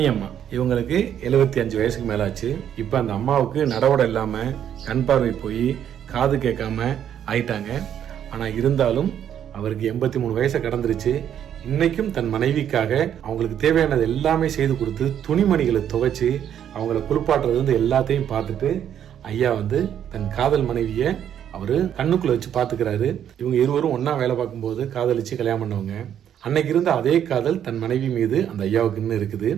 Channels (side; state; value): left; quieter; 9.7 dB